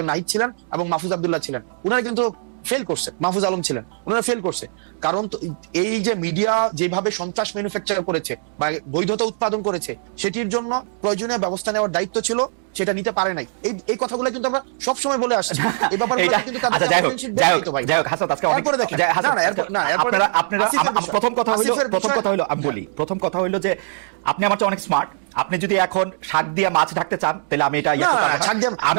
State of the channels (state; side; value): silent; left; digital silence